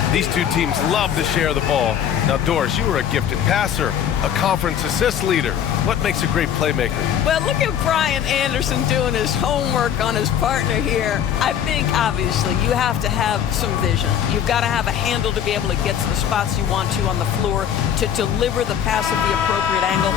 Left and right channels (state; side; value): quieter; right; 9.2 dB